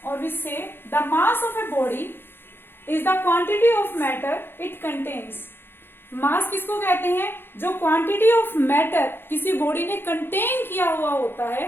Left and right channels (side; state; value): right; late; 0.10 ms